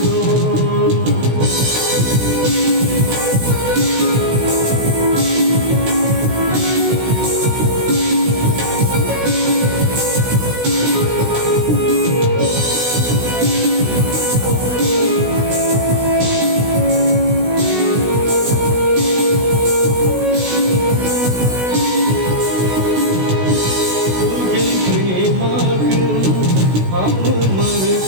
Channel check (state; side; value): late; left; 16 ms